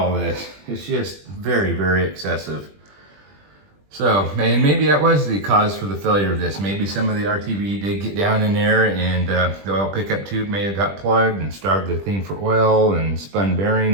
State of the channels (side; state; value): left; late; 20 ms